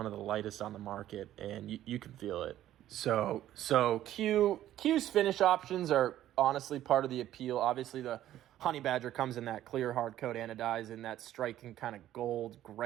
of the lightest on the market, and you can feel it. So Q's finish options are honestly part of the appeal. Obviously, the Honey Badger comes in that clear hard coat anodized and that striking kind of gold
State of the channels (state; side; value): quieter; left; 12.8 dB